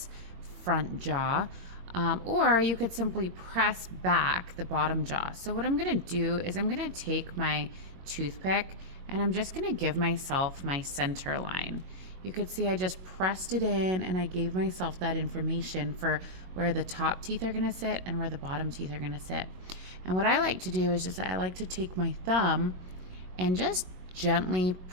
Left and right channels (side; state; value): left; late; 22 ms